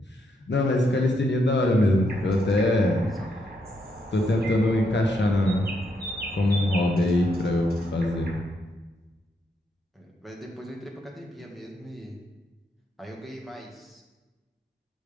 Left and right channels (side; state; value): both; normal; correlation 0.78